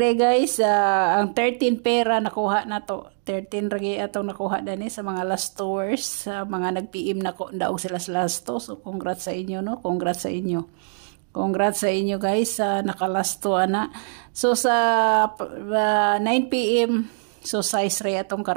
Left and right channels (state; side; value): silent; left; digital silence